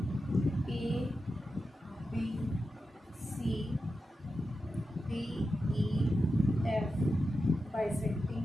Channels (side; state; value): both; normal; correlation 0.90